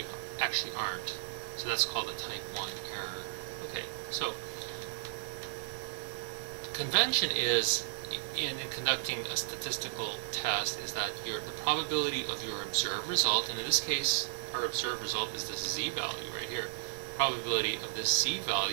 actually aren't. So that's called a type 1 error. Okay, so convention is, in conducting a statistical test, is that the probability of your observed result, and in this case, our observed result is the z-value right here. Probability of this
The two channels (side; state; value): left; silent; 55 dB below the other